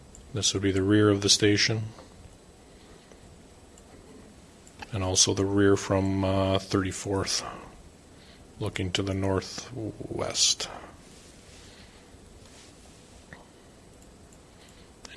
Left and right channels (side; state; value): both; identical; correlation 1.00